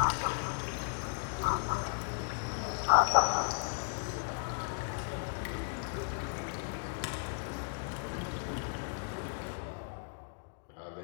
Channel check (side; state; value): right; silent; digital silence